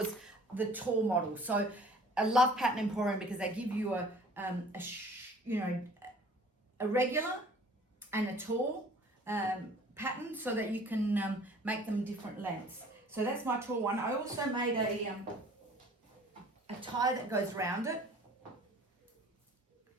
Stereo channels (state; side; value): normal; both; correlation 0.51